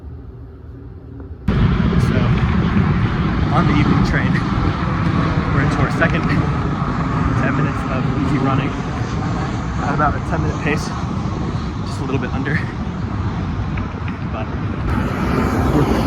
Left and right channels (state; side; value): identical; both; correlation 1.00